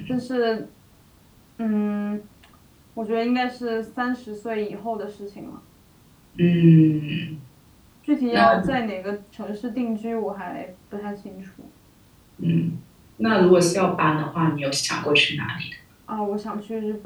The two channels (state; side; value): identical; both; correlation 1.00